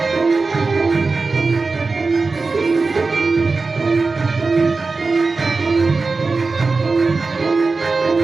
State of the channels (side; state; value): left; quieter; 4.0 dB